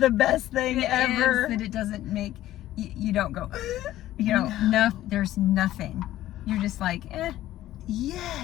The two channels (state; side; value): quieter; right; 14.2 dB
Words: the best thing ever. That it doesn't make, you don't go, you know, no, there's nothing. You're just like,